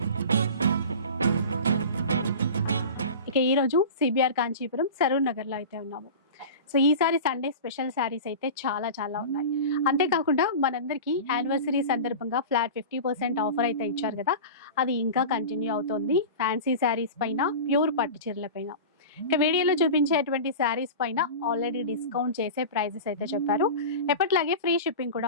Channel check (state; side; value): inverted; both; correlation -0.31